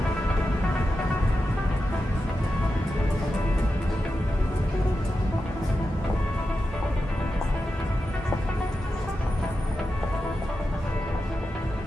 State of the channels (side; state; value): both; normal; correlation 0.90